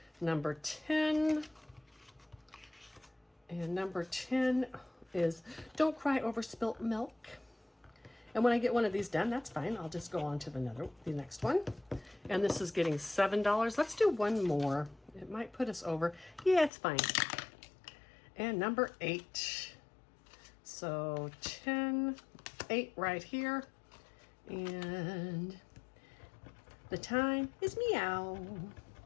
Number 10. And number 10 is Don't Cry Over Spilt Milk. And when I get one of these done, that's fine. I'll just go on to the next one. And this is getting $7. Let's do one more. It might put us over. Yeah, it's fine. And number 8. So 10, 8 right here. And the time is meow.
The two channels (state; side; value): drops out; right; at 16.7 s